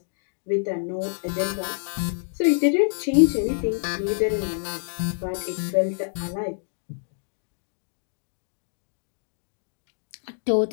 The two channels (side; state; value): right; silent; digital silence